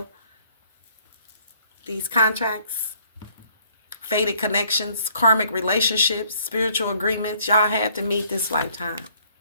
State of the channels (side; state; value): both; inverted; correlation -0.62